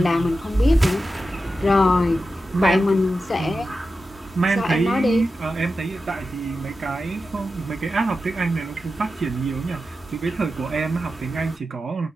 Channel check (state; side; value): normal; both; correlation 0.91